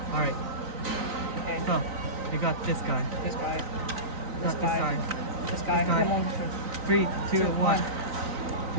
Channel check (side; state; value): left; late; 3.9 ms